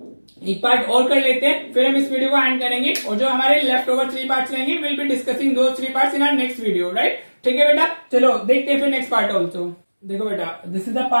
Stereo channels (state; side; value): inverted; both; correlation -1.00